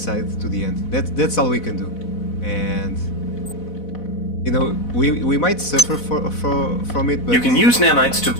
to the end. That's all we can do. And you know, we might suffer from it, but you can use nanites to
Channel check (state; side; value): late; right; 4.1 ms